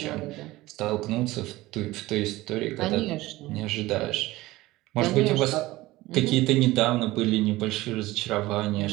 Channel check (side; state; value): left; quieter; 18.4 dB